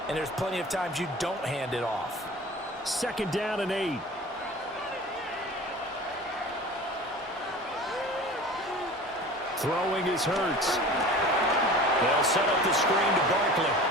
and there's plenty of times you don't hand it off. 2nd down and 8. Throwing is Hurts. They'll set up the screen to Barkley.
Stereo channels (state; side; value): normal; both; correlation 0.39